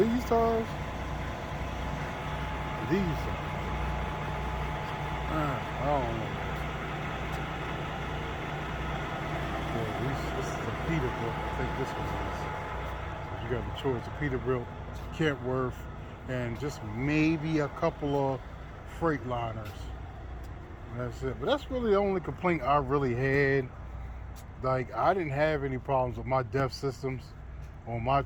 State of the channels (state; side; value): identical; both; correlation 1.00